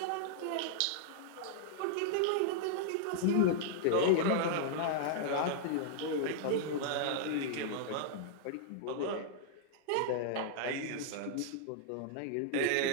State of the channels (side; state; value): both; different; correlation -0.01